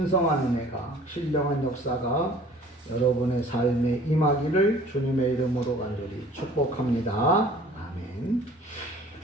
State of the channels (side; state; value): both; normal; correlation 0.50